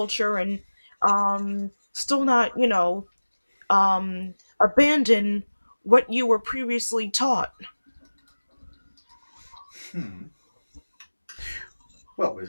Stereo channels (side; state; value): both; inverted; correlation -1.00